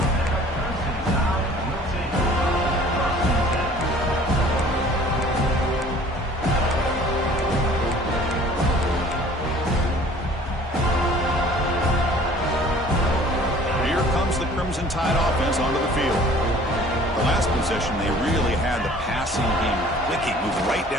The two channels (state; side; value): normal; both; correlation 0.51